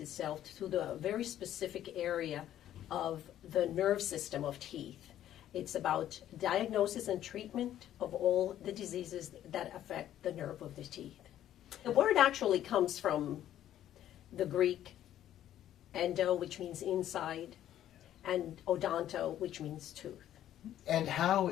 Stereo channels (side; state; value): right; quieter; 11.8 dB